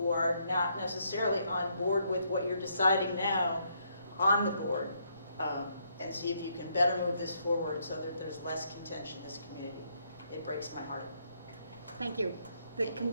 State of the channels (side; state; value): both; inverted; correlation -0.74